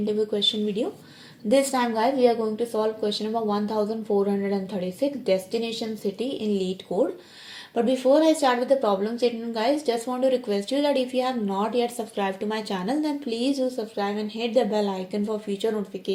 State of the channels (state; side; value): identical; both; correlation 1.00